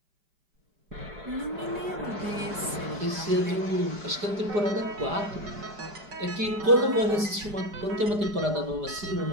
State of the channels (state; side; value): late; left; 4.9 ms